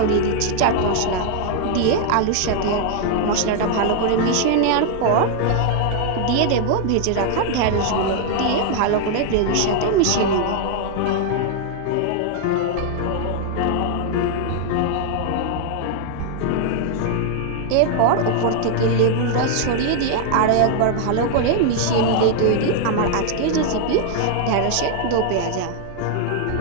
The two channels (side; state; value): both; different; correlation 0.00